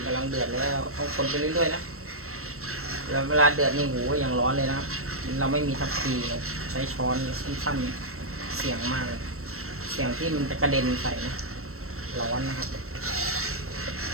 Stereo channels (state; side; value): late; left; 0.63 ms